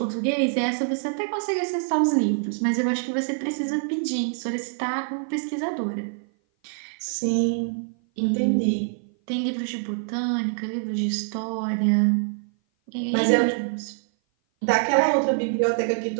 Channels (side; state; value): left; silent; 57 dB below the other